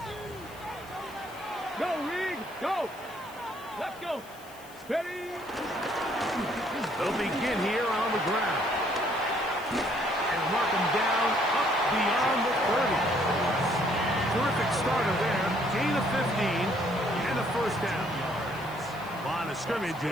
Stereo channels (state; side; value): noise; left; hiss, 22 dB below the sound